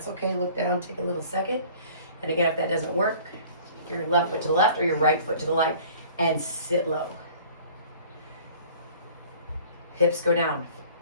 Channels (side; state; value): both; inverted; correlation -0.49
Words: okay. Look down. Take a little second. And again, if that doesn't work, take your left foot to the left or your right foot to the right and sit low. Hips go down.